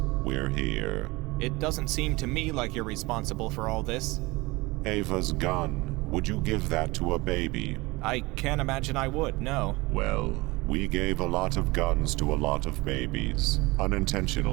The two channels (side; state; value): left; quieter; 22.8 dB